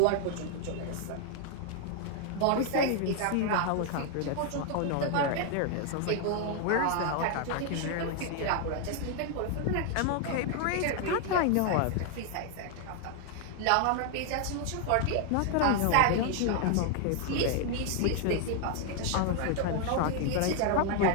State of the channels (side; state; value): both; different; correlation 0.00